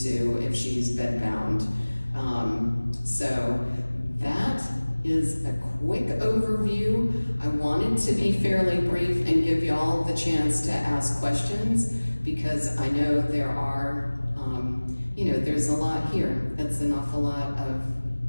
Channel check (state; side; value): inverted; both; correlation -1.00